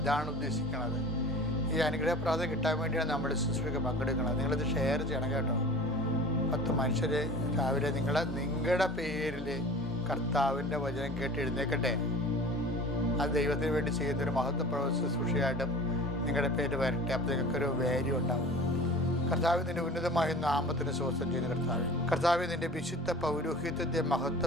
ഉദ്ദേശിക്കുന്നത്. ഈ അനുഗ്രഹ പ്രാർത്ഥന കിട്ടാൻ വേണ്ടിയാണ് നമ്മൾ ശുശ്രൂഷയ്ക്ക് പങ്കെടുക്കുന്നത്. നിങ്ങളിത് ഷെയർ ചെയ്യണം കേട്ടോ. 10 മനുഷ്യർ രാവിലെ നിങ്ങളുടെ പേരിൽ കർത്താവിൻ്റെ വചനം കേട്ട് എഴുന്നേക്കട്ടെ. അത് ദൈവത്തിന് വേണ്ടി ചെയ്യുന്നൊരു മഹത്വപ്രവ ശുശ്രൂഷയായിട്ടും നിങ്ങളുടെ പേര് വരട്ടെ. അപ്പോൾ നിങ്ങൾക്കൊരു വാല്യൂ ഉണ്ടാവും. കർത്താവ് നിൻ്റെ ഉന്നതമായ നാമത്തിന് സ്വസ്ഥം ചെയ്യുന്ന കർത്താവ് നിൻ്റെ വിശുദ്ധ പൗരോഹിത്യത്തെ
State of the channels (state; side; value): normal; both; correlation 0.40